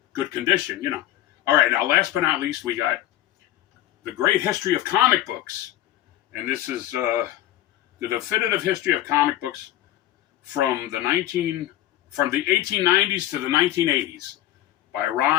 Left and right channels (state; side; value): quieter; right; 13.8 dB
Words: good condition, All right, now last but not least, we got The Great History of Comic Books. And this is the definitive history of comic books from the 1890s to the 1980s by